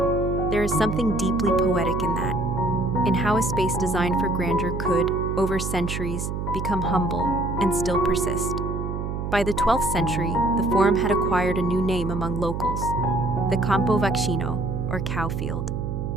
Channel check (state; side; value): noise; right; hum, 3 dB below the sound